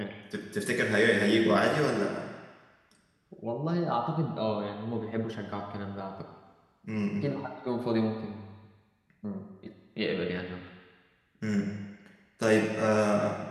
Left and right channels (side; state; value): both; identical; correlation 1.00